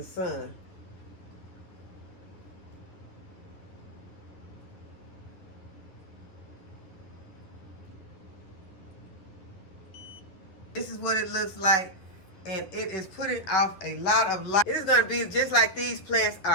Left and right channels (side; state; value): right; late; 10 ms